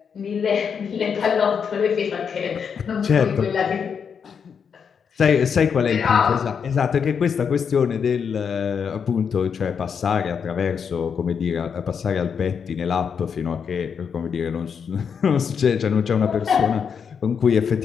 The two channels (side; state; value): right; quieter; 6.8 dB